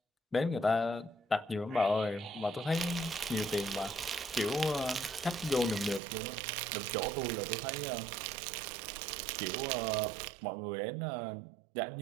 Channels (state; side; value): drops out; left; at 6.0 s